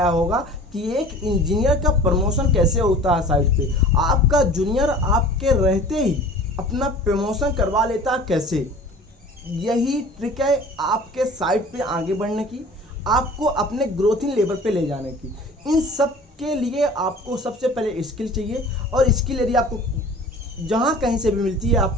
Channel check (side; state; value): both; normal; correlation 0.44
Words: होगा कि एक इंजीनियर का प्रमोशन कैसे होता है साइट पे। आपका जूनियर आपके रहते ही अपना प्रमोशन करवा लेता है कैसे। यही ट्रिक है आपके साइट पे आगे बढ़ने की, आपको अपने ग्रोथिंग लेवल पे ले जाने की। इन सब के लिए आपको सबसे पहले स्किल चाहिए, और स्किल यदि आपको जहाँ कहीं से भी मिलती है आप